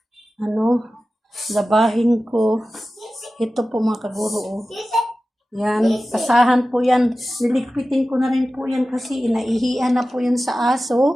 labahin ko. Ito po mga kaguro, oh. Yan, pasahan po yan. Niligpitin ko na rin po yan kasi inaihian na po yan sa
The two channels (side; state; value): both; normal; correlation 0.95